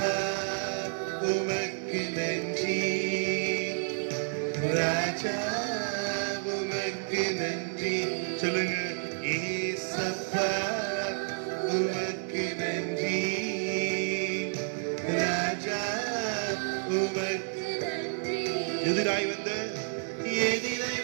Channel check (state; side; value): silent; left; 58 dB below the other